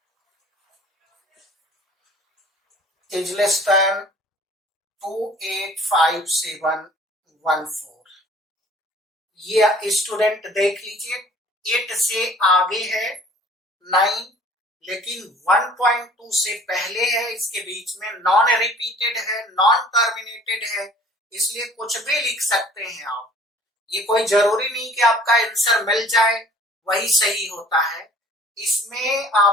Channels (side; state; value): both; normal; correlation 0.52